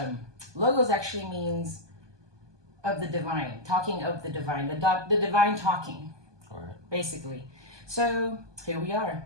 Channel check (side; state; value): left; late; 1.2 ms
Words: logos actually means of the divine, talking of the divine, the divine talking, All right. basically. So here we are,